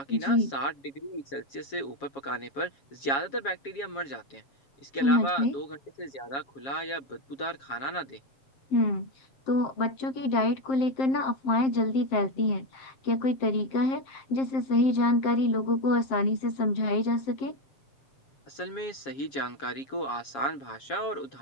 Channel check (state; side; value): late; right; 7.3 ms